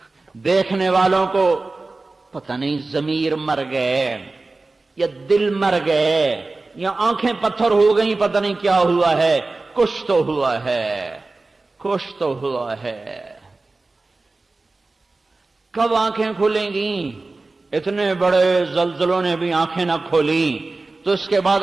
دیکھنے والوں کو پتہ نہیں ضمیر مر گئے یا دل مر گئے یا آنکھیں پتھر ہو گئیں، پتہ نہیں کیا ہوا ہے، کچھ تو ہوا ہے، کچھ تو ہوا ہے۔ کب آنکھیں کھلیں گی؟ اتنے بڑے زلزلوں نے بھی آنکھیں نہ کھولی، تو اس کے بعد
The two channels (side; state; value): left; quieter; 3.4 dB